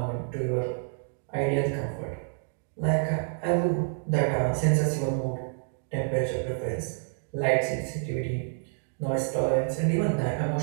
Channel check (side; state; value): left; silent; digital silence